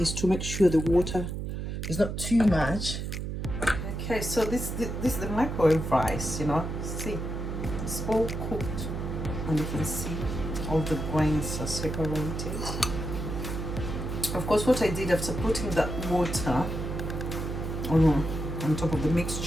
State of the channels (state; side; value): noise; right; hum, 4 dB below the sound